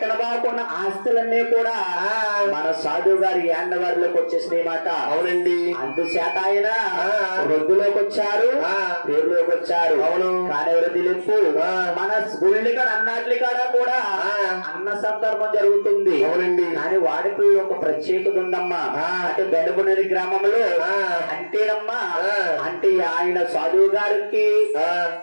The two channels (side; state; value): both; inverted; correlation -1.00